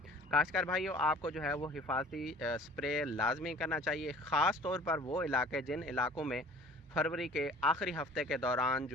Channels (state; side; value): normal; both; correlation 0.48